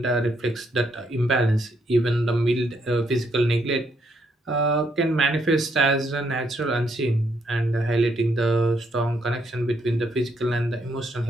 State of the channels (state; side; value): normal; both; correlation 0.74